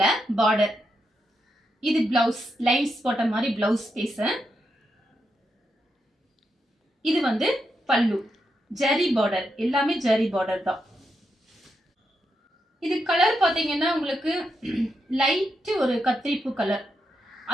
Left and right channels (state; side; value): normal; both; correlation 0.84